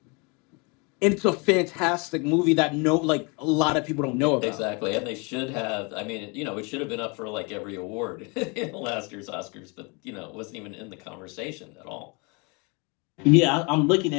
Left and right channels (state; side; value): quieter; right; 30.9 dB